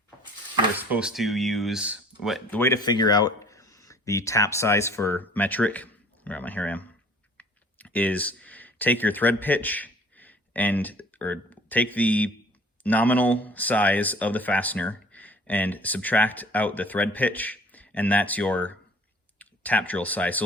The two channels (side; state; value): both; normal; correlation 0.51